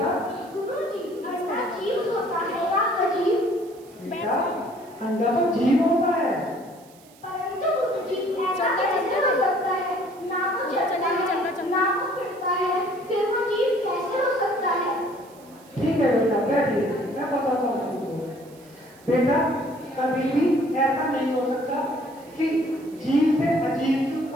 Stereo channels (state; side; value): noise; right; hiss, 26 dB below the sound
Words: गुरुजी, अंडा जीव होता है या अजीब? बेटा, अंडा तो जीव होता है। परंतु गुरुजी, ऐसा कैसे हो सकता है? ना वो चलता है, ना वो फिरता है, फिर वो जीव कैसे हो सकता है? ठीक है बेटा, बैठिए, मैं बताता हूँ तुमको। बेटा, कभी भी ऐसा नहीं हो सकता कि जीव से अजीब की